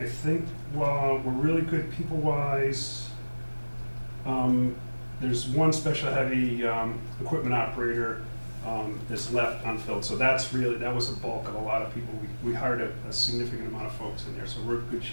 think we're really good people-wise. There's one special heavy equipment operator that's left unfilled. So that was a bulk of a lot of people. We hired a significant amount of folks in there, so we're in good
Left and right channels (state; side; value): inverted; both; correlation -1.00